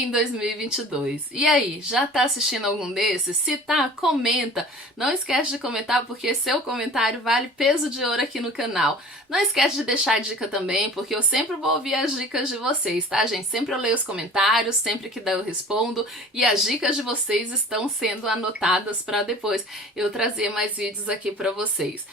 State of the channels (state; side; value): normal; both; correlation 0.44